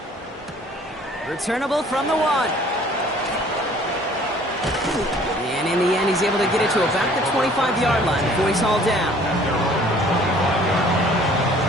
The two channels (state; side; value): normal; both; correlation 0.54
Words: Returnable from the 1. And in the end, he's able to get it to about the 25-yard line before he's hauled down.